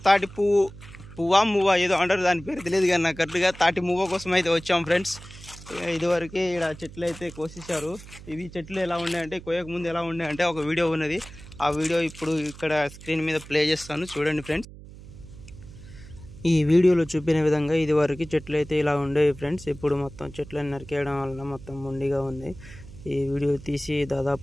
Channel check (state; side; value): noise; right; hum, 17 dB below the sound